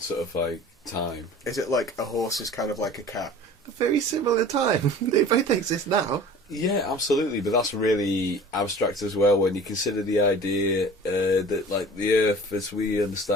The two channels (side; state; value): both; normal; correlation 0.43